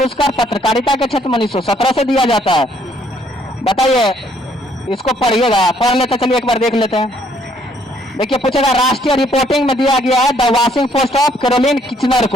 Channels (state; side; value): normal; both; correlation 0.66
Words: पत्रकारिता के क्षेत्र में 1917 से दिया जाता है। बताइए इसको पढ़िएगा, पढ़ लेते चलिए एक बार देख लेते हैं। देखिए पूछेगा राष्ट्रीय रिपोर्टिंग में दिया गया है the Washington Post of Caroline Kitchener